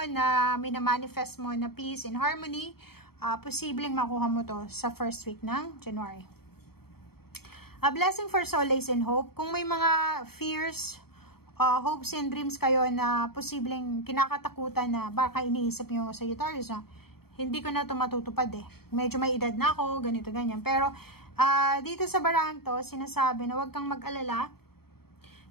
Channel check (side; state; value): right; late; 0.95 ms